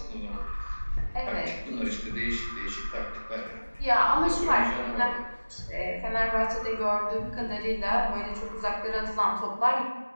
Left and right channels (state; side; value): inverted; both; correlation -1.00